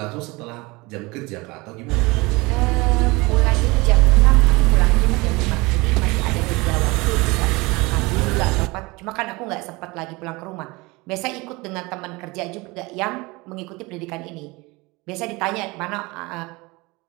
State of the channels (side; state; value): left; quieter; 24.0 dB